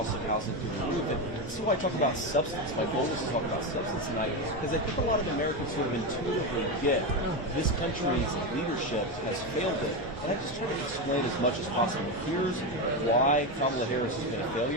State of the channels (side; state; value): both; normal; correlation 0.13